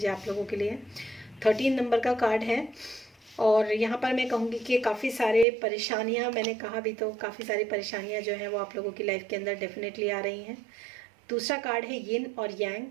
है आप लोगों के लिए। 13 नंबर का कार्ड है और यहाँ पर मैं कहूँगी कि काफ़ी सारे परेशानियाँ, मैंने कहा भी तो काफ़ी सारी परेशानियाँ जो हैं वो आप लोगों की लाइफ के अंदर डेफिनेटली आ रही हैं। दूसरा कार्ड है यिन और yang,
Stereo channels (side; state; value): left; drops out; at 5.5 s